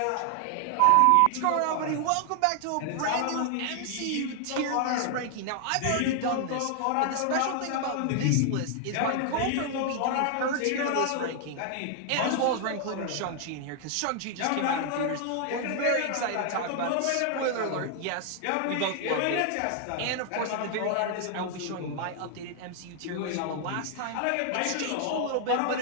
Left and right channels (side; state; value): both; different; correlation 0.00